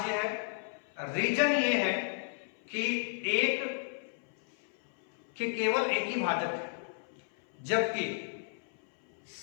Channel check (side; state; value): right; silent; 56 dB below the other